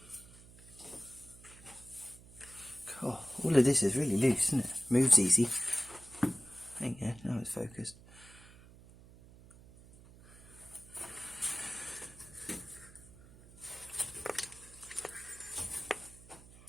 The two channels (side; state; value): right; noise; hum, 21 dB below the sound